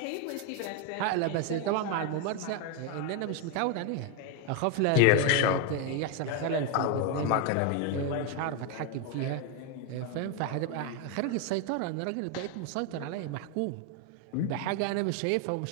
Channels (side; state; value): both; different; correlation 0.01